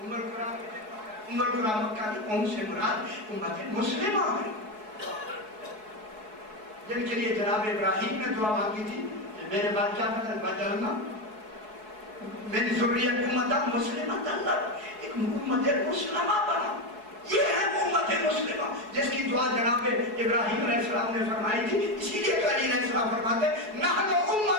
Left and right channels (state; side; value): late; left; 4.7 ms